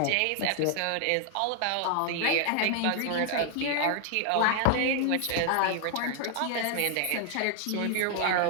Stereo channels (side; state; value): both; different; correlation 0.00